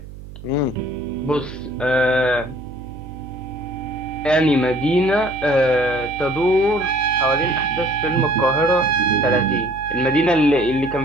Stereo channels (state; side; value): noise; right; hum, 15 dB below the sound